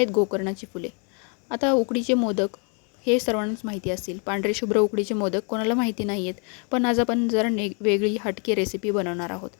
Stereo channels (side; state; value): right; quieter; 37.5 dB